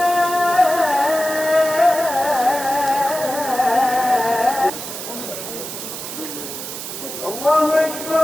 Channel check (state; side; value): noise; right; hiss, 8 dB below the sound